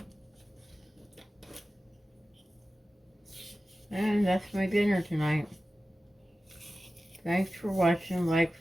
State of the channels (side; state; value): both; normal; correlation 0.95